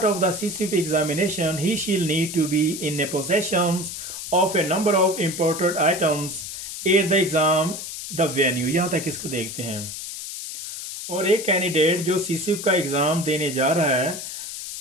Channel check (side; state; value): left; noise; hiss, 8 dB below the sound